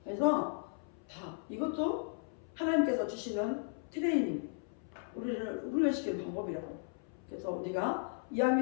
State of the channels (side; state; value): right; silent; 54 dB below the other